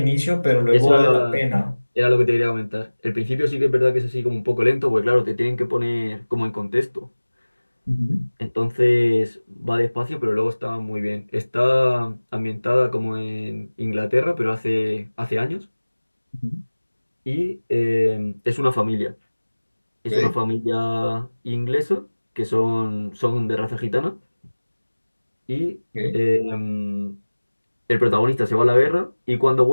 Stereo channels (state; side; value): inverted; both; correlation -1.00